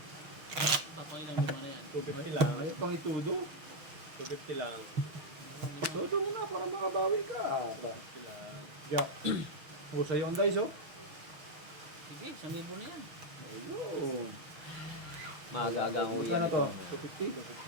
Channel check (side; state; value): left; late; 6.3 ms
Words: Papailan lima na yan. 250 lang. Ay, pang itudo. 250 lang. Todo mo na para makabawi ka. 250 lang. Jack. O, sa'yo ang dice, oh. Sige, 1,000 na yan. Ayun. Magagang Magkano to? 250?